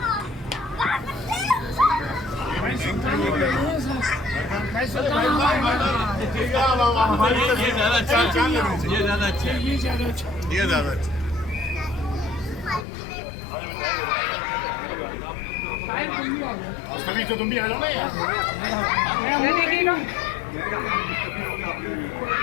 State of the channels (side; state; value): right; drops out; at 12.9 s